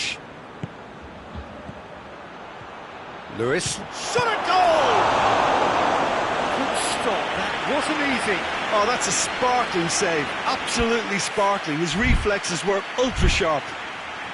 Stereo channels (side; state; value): both; identical; correlation 1.00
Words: Lewis. Shot at goal! Good stop, that wasn't easy. Oh, that's a sparkling save, absolutely sparkling. His reflexes were ultra-sharp.